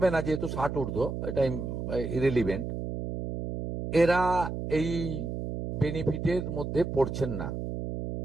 না যেহেতু 60 ঊর্ধ্ব, এটা ইরেলিভেন্ট, এরা এই বেনিফিটের মধ্যে পড়ছেন না।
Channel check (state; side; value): noise; right; hum, 5 dB below the sound